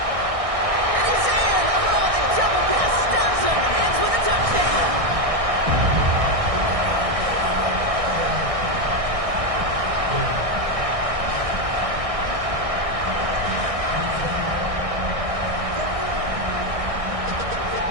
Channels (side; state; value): left; late; 1.6 ms